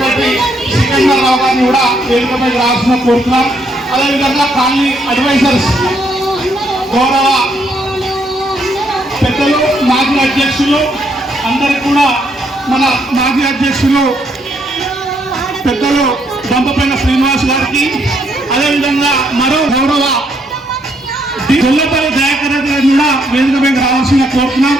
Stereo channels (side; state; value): both; normal; correlation 0.73